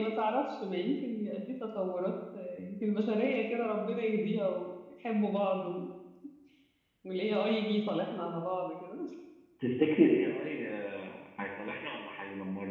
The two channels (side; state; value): both; identical; correlation 1.00